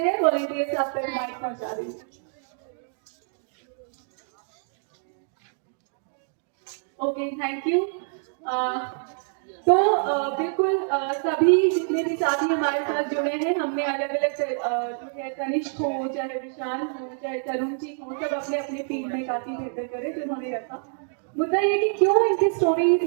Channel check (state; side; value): silent; left; digital silence